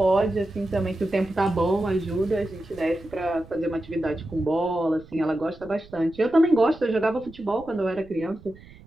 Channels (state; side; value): noise; right; rumble, 21 dB below the sound